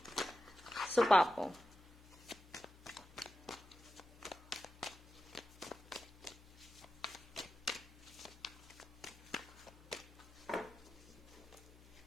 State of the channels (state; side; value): noise; left; hum, 22 dB below the sound